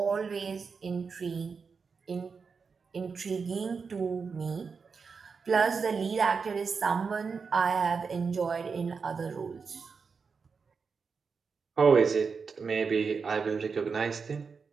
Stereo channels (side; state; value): left; quieter; 5.3 dB